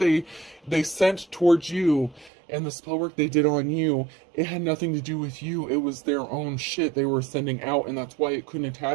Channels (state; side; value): drops out; left; at 2.3 s